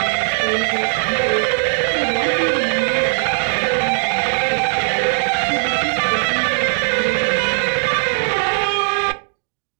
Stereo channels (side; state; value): left; silent; digital silence